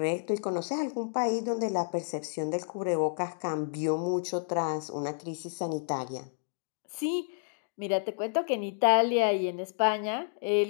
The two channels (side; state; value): right; silent; digital silence